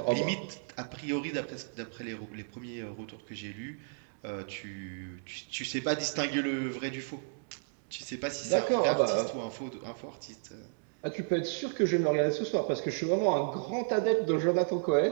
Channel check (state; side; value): silent; left; digital silence